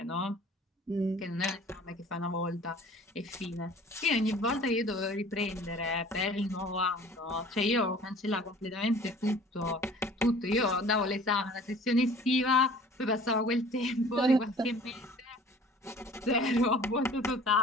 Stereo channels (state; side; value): normal; both; correlation 0.48